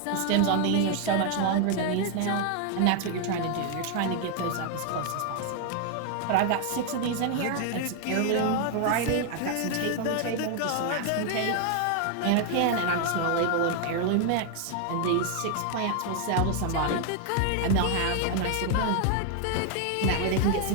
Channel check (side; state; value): both; different; correlation 0.00